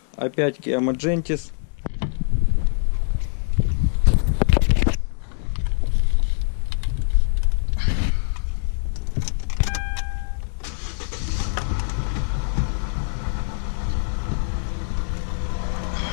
Опять Kia Magentis.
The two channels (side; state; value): right; silent; 63 dB below the other